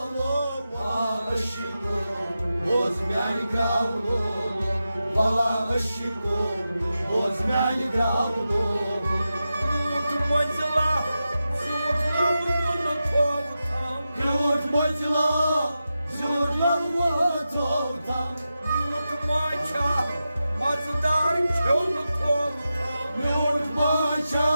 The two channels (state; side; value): inverted; both; correlation -0.91